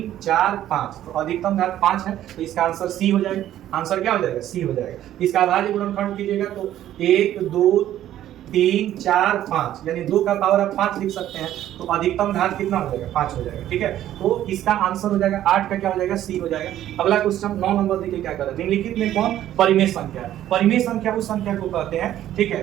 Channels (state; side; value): quieter; left; 12.4 dB